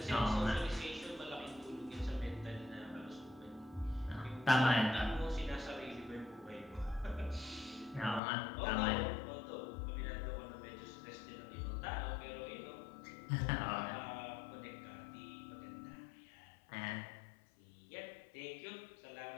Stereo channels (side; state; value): right; drops out; at 8.2 s